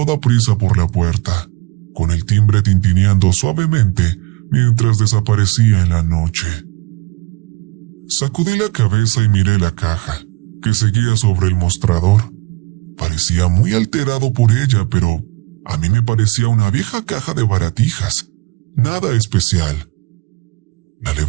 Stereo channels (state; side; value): quieter; left; 22.8 dB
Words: prisa por la puerta, con el timbre tintineando suavemente mientras desaparecía en la noche. Sacudí la cabeza y miré la caja, que seguía sobre el mostrador. Parecía muy alterado por ella, pero a mí me parecía una vieja caja de baratijas. Nada especial. La